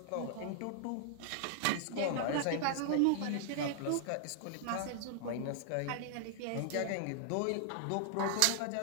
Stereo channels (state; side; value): different; both; correlation -0.01